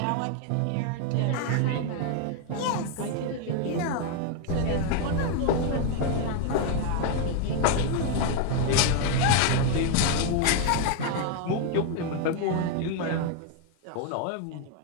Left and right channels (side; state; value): both; different; correlation 0.01